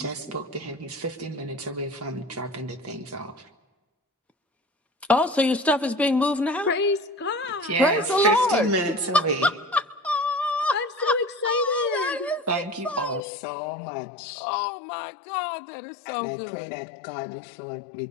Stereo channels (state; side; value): drops out; right; at 13.2 s